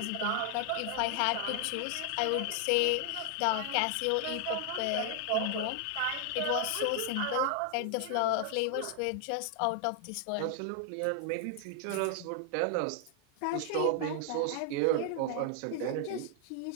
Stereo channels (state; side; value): different; both; correlation 0.00